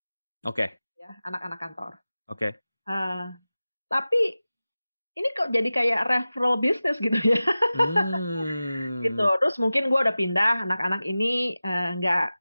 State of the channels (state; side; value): inverted; both; correlation -0.96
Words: Oke. Ya, anak-anak kantor. Oke. Tapi ini kok jadi kayak referral business gitu ya. Gitu. Terus mungkin gue udah pindah, anak-anak ini nggak